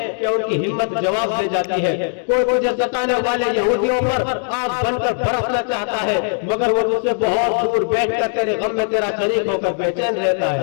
کہ ان کی ہمت جواب دے جاتی ہے۔ کوئی تجھے ستانے والے یہودیوں پر آگ بن کر برسنا چاہتا ہے مگر وہ تجھ سے بہت دور بیٹھ کر تیرے غم میں تیرا شریک ہو کر بے چین رہتا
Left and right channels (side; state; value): right; silent; 63 dB below the other